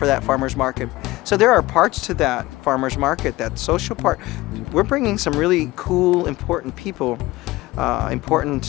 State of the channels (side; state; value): right; quieter; 19.2 dB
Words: that farmer's market? So there are parts to that farmer's market, that social part. We're bringing some really cool, important people,